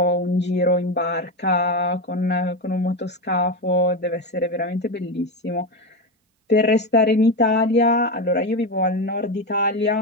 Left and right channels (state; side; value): normal; both; correlation 0.15